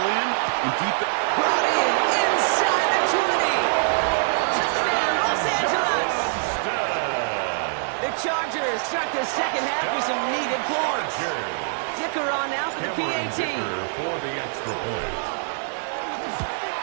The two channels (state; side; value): silent; left; 63 dB below the other